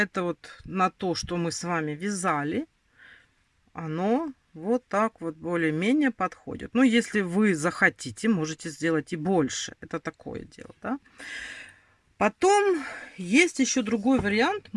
вот на то, что мы с вами вязали, оно вот так вот более-менее подходит. Ну, если вы захотите, можете сделать и больше. Это такое дело, да. Потом есть еще другой вариант.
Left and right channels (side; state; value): both; identical; correlation 1.00